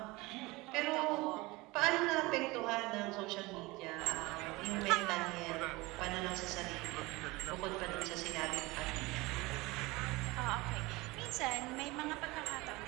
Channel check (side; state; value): left; quieter; 22.4 dB